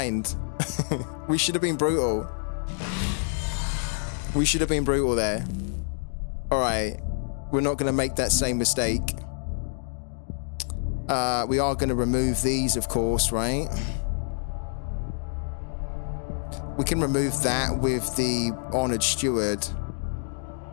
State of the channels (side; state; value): right; silent; digital silence